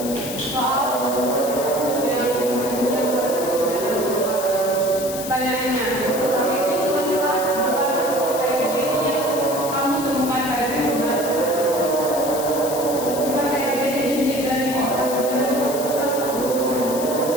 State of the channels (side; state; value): left; noise; hiss, 9 dB below the sound